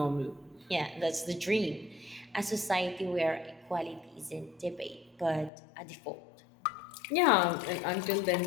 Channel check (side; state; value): right; drops out; at 5.5 s